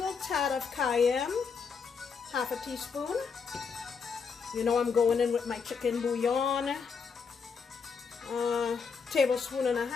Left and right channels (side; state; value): right; quieter; 5.7 dB